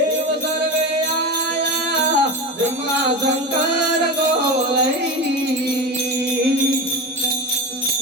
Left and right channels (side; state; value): both; normal; correlation 0.24